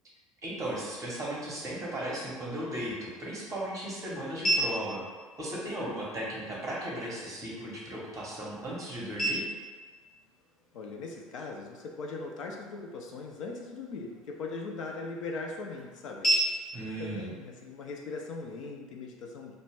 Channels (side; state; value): both; normal; correlation 0.52